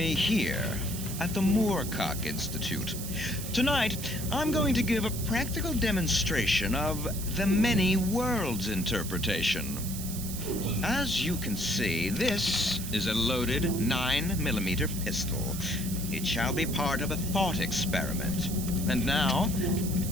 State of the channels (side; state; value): right; noise; hiss, 8 dB below the sound